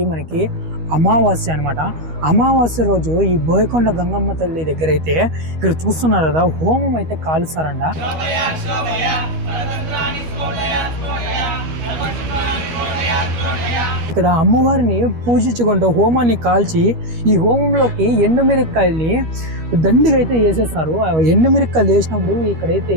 మనకి అమావాస్య అనమాట. అమావాస్య రోజు ఈ బోయకొండ గంగమ్మ తల్లి దగ్గర అయితే ఇక్కడ చూస్తున్నారు కదా, హోమం అయితే కాలుస్తారంట. ఇక్కడ అమ్మవారిని పూజించుకుంటూ హోమాన్ని కాల్చి ఈ హోమంలోకి ఎండుమిరక్కాయల్ని దండిగా అయితే వేసేస్తారు. ఎండుమిరక్కాయలు వేసినప్పుడు ఇక్కడైతే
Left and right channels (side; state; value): left; late; 13 ms